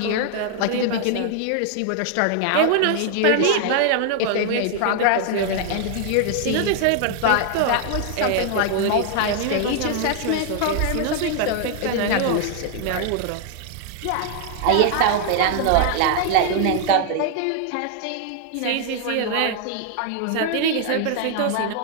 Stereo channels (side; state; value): both; different; correlation 0.00